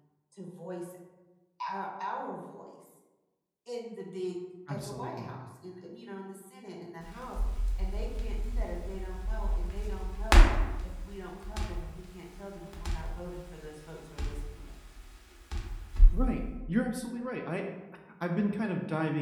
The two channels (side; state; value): both; identical; correlation 1.00